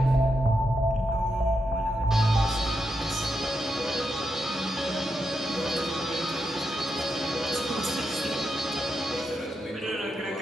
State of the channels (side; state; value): both; normal; correlation 0.84